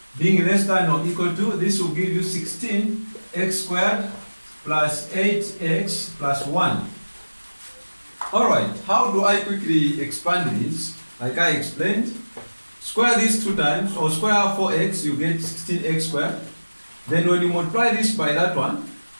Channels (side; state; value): both; inverted; correlation -1.00